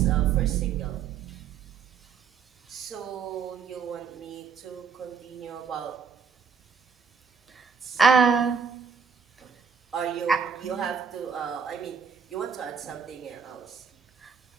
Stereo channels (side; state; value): left; quieter; 6.1 dB